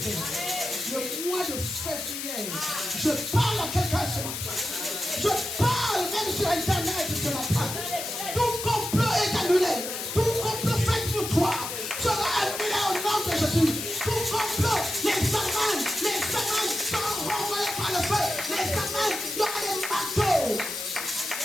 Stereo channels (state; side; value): noise; left; hiss, 5 dB below the sound